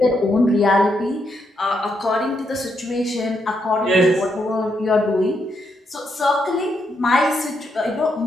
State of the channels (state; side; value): normal; both; correlation 0.79